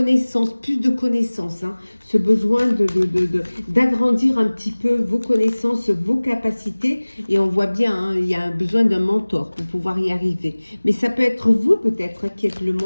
plus de connaissances. Ce besoin d'agrandir un petit peu vos connaissances, vos capacités. Et on voit bien, il y a un besoin d'un mentor pour pouvoir y arriver. Mais ça peut être vous peut-être qui êtes le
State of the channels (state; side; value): inverted; both; correlation -1.00